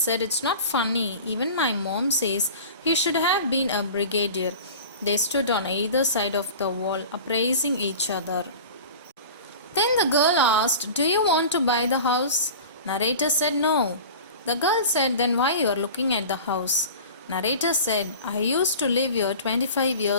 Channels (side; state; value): both; inverted; correlation -0.36